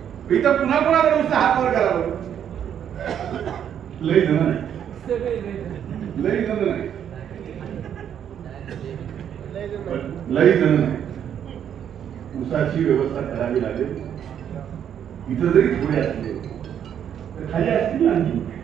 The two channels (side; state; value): left; quieter; 9.2 dB